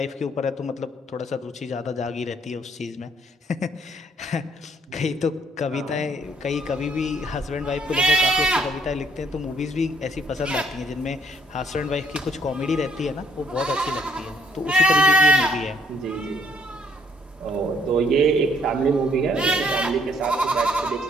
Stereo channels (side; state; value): both; normal; correlation 0.67